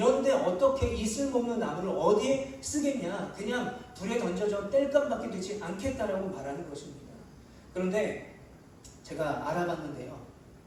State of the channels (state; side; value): identical; both; correlation 1.00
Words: 어떻게 이 쓸모없는 나무를 어디에 쓰겠냐? 그냥 불에 던져져 땔감밖에 되지 않겠다라고 말하는 것입니다. 그런데 제가 알아봤는데요,